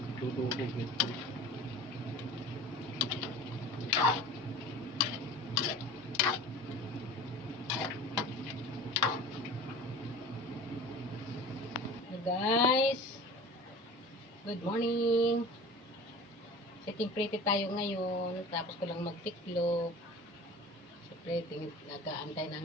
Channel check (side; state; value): both; normal; correlation 0.39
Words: Tutubog ito. Guys, good morning. Setting pretty tayo ngayon. Tapos ko lang magtiklop. Siyempre, nag-aantay